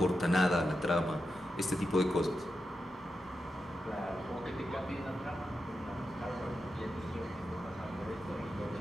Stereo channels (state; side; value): normal; both; correlation 0.88